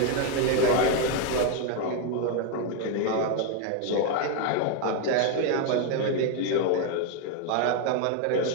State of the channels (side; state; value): both; different; correlation 0.01